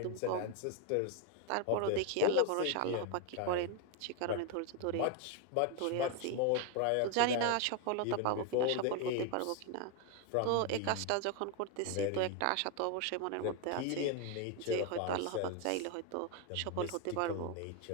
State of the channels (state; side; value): different; both; correlation 0.01